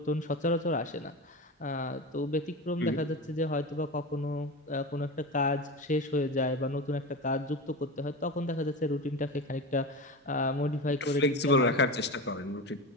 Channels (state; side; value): normal; both; correlation 0.25